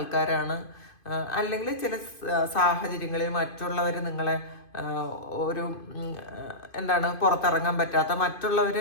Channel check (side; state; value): right; late; 2.5 ms